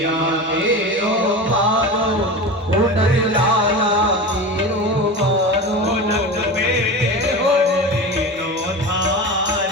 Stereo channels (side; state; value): both; normal; correlation 0.28